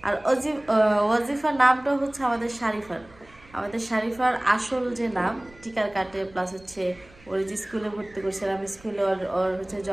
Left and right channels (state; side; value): noise; right; rumble, 25 dB below the sound